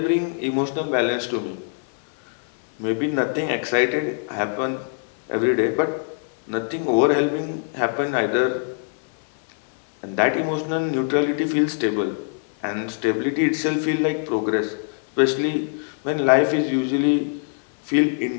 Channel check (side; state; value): right; silent; 63 dB below the other